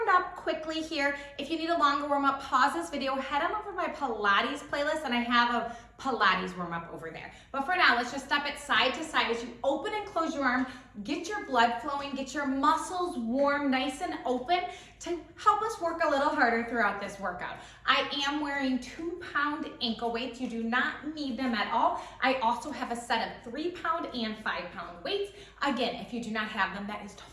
up quickly here. If you need a longer warm-up, pause this video, head on over to my Pilates playlist, and I have a Pilates warm-up over there. But for now, let's just step it side to side as you open and close your arm, get your blood flowing, get your muscles warm, nice and open to help us work a little harder throughout this workout. I am wearing 2-pound ankle weights. You do not need them at all. I also have a set of 3-pound and 5-pound weights. Again, if you do not have them, that is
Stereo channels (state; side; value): identical; both; correlation 1.00